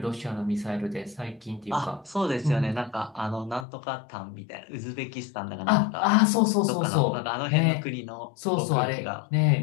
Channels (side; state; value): right; drops out; at 3.7 s